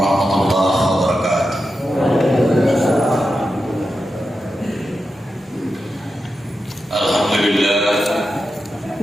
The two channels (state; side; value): normal; both; correlation 0.89